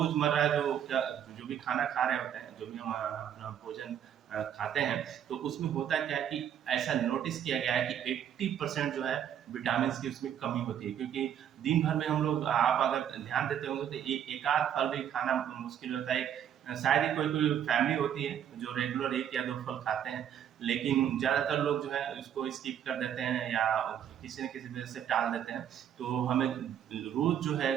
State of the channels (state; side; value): quieter; left; 9.5 dB